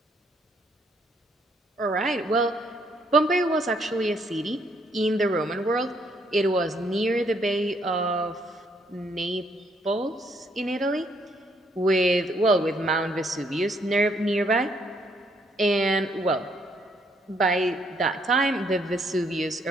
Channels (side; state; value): both; normal; correlation 0.70